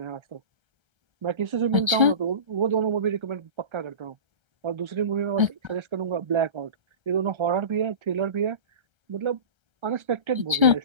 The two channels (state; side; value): late; left; 1.3 ms